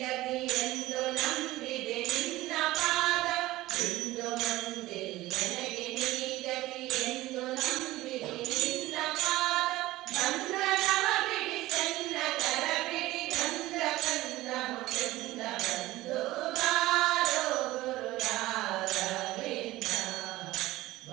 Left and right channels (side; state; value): left; quieter; 17.3 dB